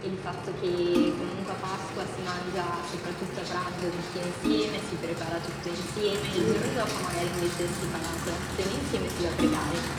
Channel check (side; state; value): both; identical; correlation 1.00